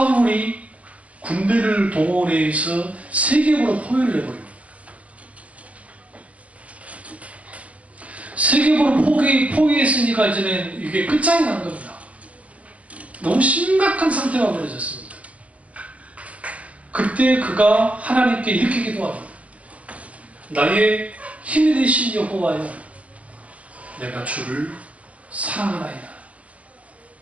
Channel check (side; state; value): left; late; 0.066 ms